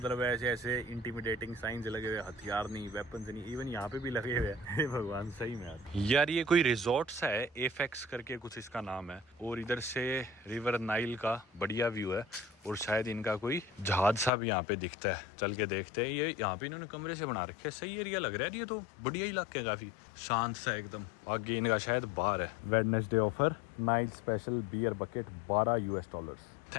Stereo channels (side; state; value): right; drops out; at 14.3 s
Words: ऐसे इंटिमिडेटिंग साइंस लगे हुए, हथियार नहीं, वेपन्स नहीं, इवन यहाँ पे भी लगे हुए हैं। हे भगवान सही में यार ये कोई रिजॉर्ट सा है, एफेक्स करके कुछ इसका नाम है, और इधर से रिवर नाइल का बढ़िया व्यू है, और शायद इनका कोई जहाज सा भी यहाँ पे दिखता है, चल के देखते हैं। ये यहाँ पे इन्होंने कमरे से बना रखे हैं, सही एरिया लग रहा है ये तो, बढ़िया इलाके काफी शांत सा एकदम। आगे इनका शायद बार है, Wednesday offer Nile special beer bucket $12।